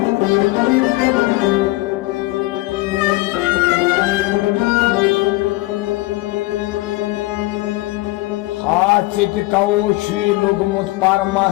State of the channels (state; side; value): quieter; right; 20.7 dB